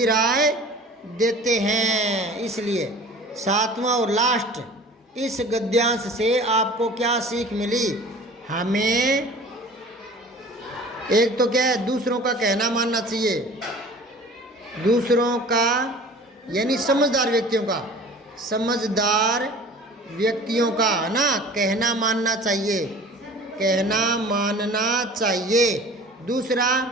देते हैं। इसलिए 7वां और लास्ट, इस गद्यांश से आपको क्या सीख मिली? हमें एक तो क्या है, दूसरों का कहना मानना चाहिए, दूसरों का यानी समझदार व्यक्तियों का है ना, कहना मानना चाहिए। दूसरा,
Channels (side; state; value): both; normal; correlation 0.44